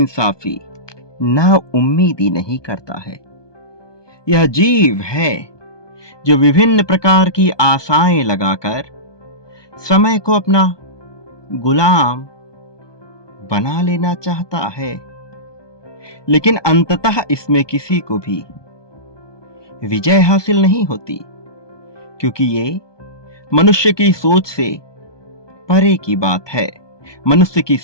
ना उम्मीदी नहीं करता है। यह जीव है जो विभिन्न प्रकार की आशाएं लगाकर समय को अपना गुलाम बना लेना चाहता है, लेकिन अंततः इसमें किसी को भी विजय हासिल नहीं होती, क्योंकि ये मनुष्य की सोच से परे की बात है, मनुष्य की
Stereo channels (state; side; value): late; right; 1.2 ms